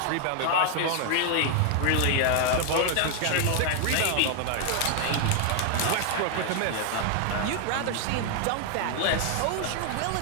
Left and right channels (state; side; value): different; both; correlation 0.00